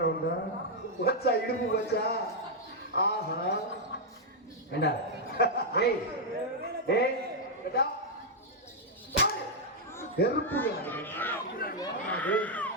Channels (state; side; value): normal; both; correlation -0.03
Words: வச்சா இடுப்பு வச்சா. ஆஹா ஏண்டா டேய் டேய் நெருப்பு